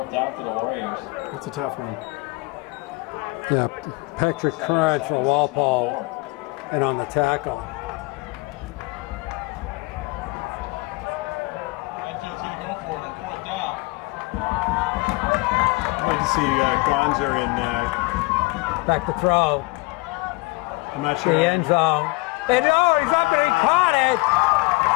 down for the Warriors. That's a tough one. Yeah, Patrick Curran for Walpole and on the tackle. Medfield's going to go for the fourth down. I'd like to see Gonzer in. Back to throw. I'm not sure. The end zone. And he's up there, he caught it.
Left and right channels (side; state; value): right; quieter; 24.8 dB